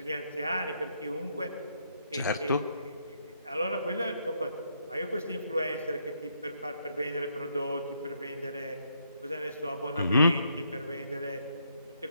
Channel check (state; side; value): inverted; both; correlation -0.74